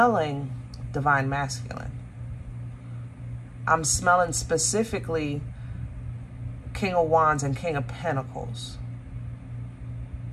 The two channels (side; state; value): both; identical; correlation 1.00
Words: divine masculine. I'm smelling specifically King of Wands and King of Pentacles.